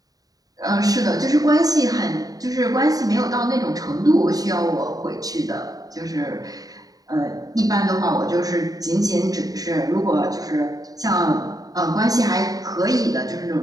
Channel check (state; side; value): late; left; 0.18 ms